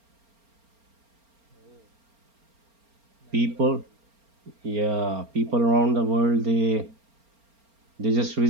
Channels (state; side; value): late; left; 4.3 ms